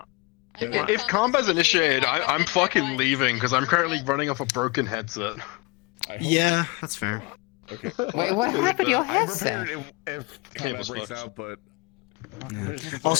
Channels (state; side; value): quieter; right; 26.7 dB